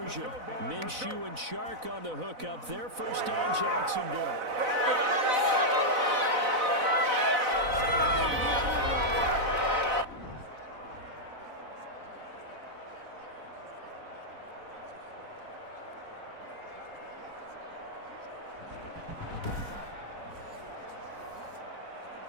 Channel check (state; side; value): late; left; 4.0 ms